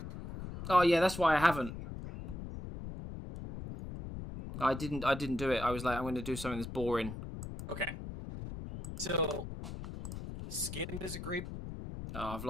Oh, yeah, that's why I haven't. I didn't do it. I was like, I'm going to do something that's boring. Okay. So, skin is a great... Oh, I've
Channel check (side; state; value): left; noise; rumble, 9 dB below the sound